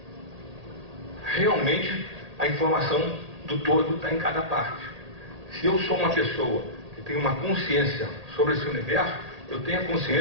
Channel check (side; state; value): left; late; 1.8 ms